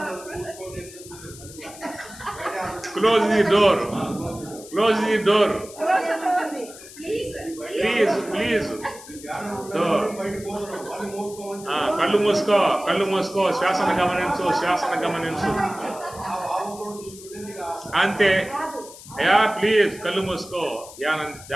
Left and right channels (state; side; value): noise; left; hiss, 17 dB below the sound